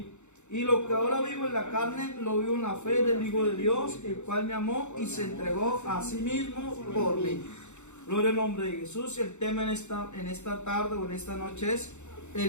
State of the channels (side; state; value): right; late; 0.83 ms